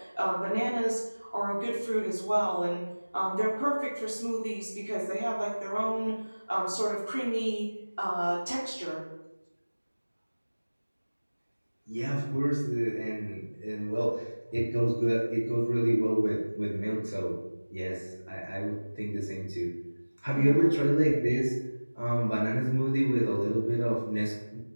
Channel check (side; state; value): both; inverted; correlation -1.00